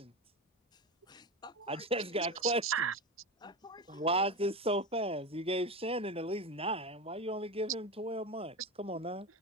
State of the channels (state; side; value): normal; both; correlation 0.21